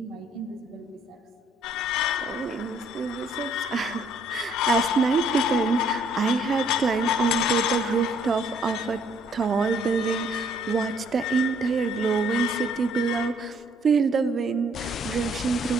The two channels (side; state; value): both; normal; correlation 0.64